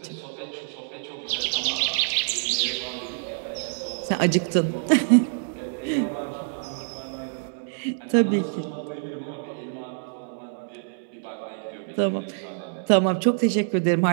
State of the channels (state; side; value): silent; left; 61 dB below the other